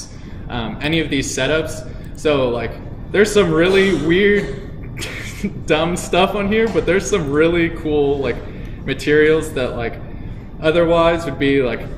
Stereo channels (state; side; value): identical; both; correlation 1.00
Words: any of these setups. So like there's some really weird dumb stuff on here, but there's some really cool like materials that like otherwise would be like